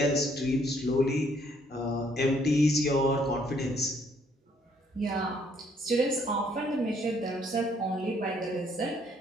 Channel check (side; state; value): both; normal; correlation 0.66